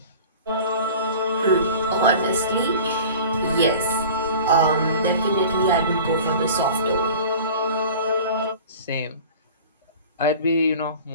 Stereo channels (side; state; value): both; inverted; correlation -0.41